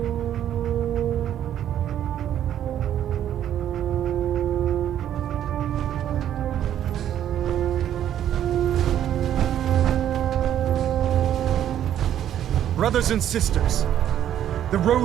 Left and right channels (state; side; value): quieter; left; 10.8 dB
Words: Brothers and sisters, the